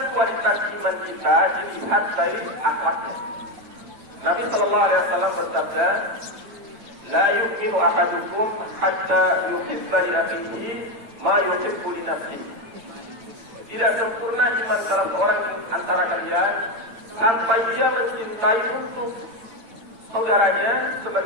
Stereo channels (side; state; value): left; late; 8.8 ms